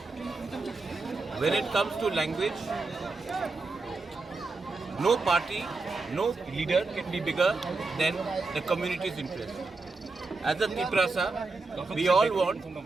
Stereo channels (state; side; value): quieter; left; 3.8 dB